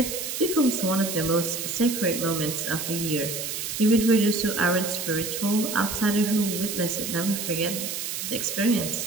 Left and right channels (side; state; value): right; noise; hiss, 4 dB below the sound